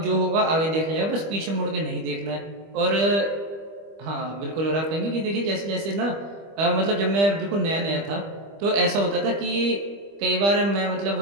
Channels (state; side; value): late; left; 25 ms